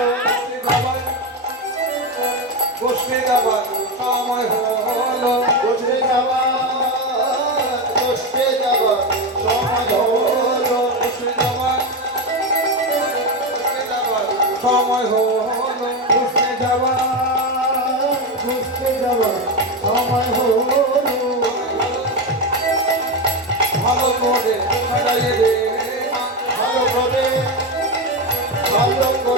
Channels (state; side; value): normal; both; correlation 0.14